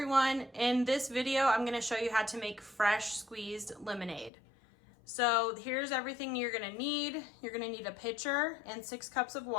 in this video I'm going to show you how to make fresh squeezed lemonade. So here's everything you're going to need. You're going to need a pitcher and 6 cups of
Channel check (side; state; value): right; drops out; at 4.3 s